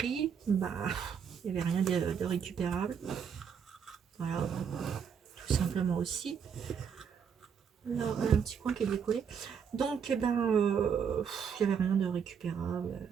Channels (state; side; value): quieter; left; 7.1 dB